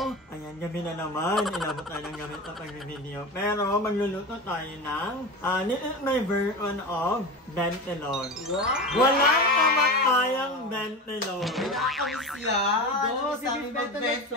ayan, gabi na naman, inabot tayo ng gabi sa pag-video. Pero, magluluto tayo ng, this is my version of bentelon. Wow! Walang kamatayang bentelon. Nakakamiss yan! Oh, Sa aming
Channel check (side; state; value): both; normal; correlation 0.27